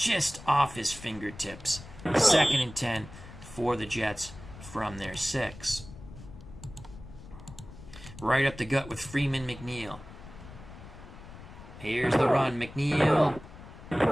off his fingertips. 2nd and 10 for the Jets from their 6. Right up the gut with Freeman McNeil. Here's the run. McNeil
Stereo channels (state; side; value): noise; left; rumble, 16 dB below the sound